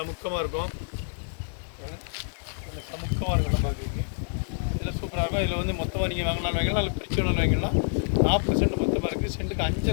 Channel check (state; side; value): silent; right; 59 dB below the other